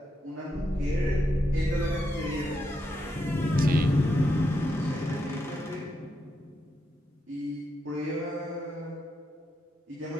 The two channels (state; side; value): normal; both; correlation 0.83